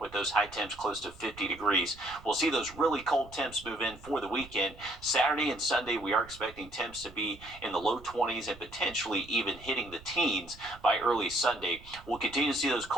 with those high temps close to 50 degrees. We'll see those really cold temps move in for the weekend. Saturday and Sunday, we are expecting temps to be in the low 20s and potentially even hitting the teens by early Sunday. We'll continue to see those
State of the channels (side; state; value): right; noise; rumble, 20 dB below the sound